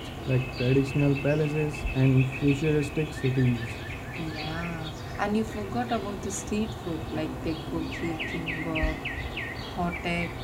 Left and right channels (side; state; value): both; identical; correlation 1.00